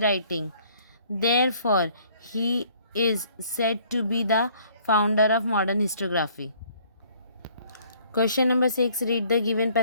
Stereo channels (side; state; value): both; inverted; correlation -0.60